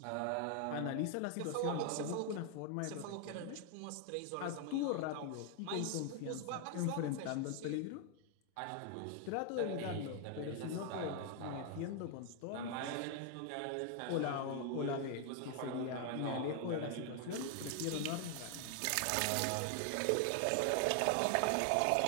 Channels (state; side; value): different; both; correlation 0.00